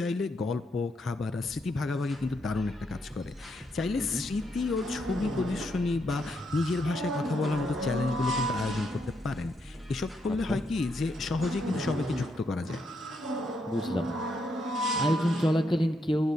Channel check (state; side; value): normal; both; correlation 0.78